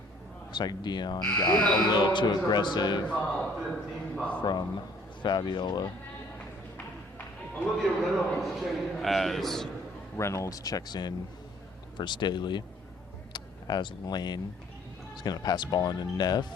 looks like Dion got a little too aggressive from Fabiola as Reynolds checks in for Staley, as Lane is going to pass the ball into Neff,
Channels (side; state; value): both; normal; correlation 0.58